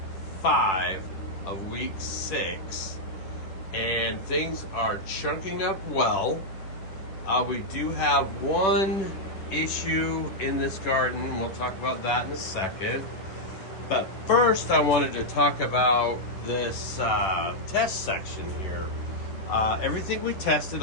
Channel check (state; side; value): late; right; 10 ms